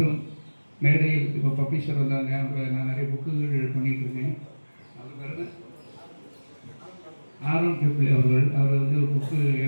மேடையில் இப்போ பப்ளிஷர் வந்தாங்க. நான் நிறைய புக்குகள் பண்ணிட்டு இருக்கேன். அவர் பிறகு ஆரோக்கிய பிள்ளை அவர்கள், அவர் வந்து புக்கு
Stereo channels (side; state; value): both; inverted; correlation -1.00